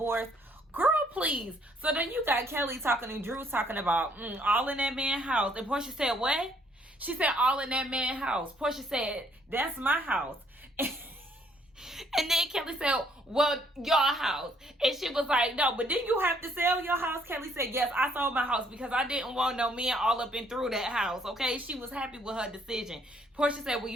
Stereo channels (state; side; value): normal; both; correlation 0.66